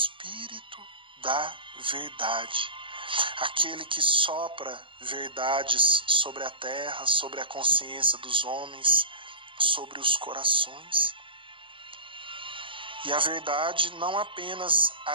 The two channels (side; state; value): left; late; 0.25 ms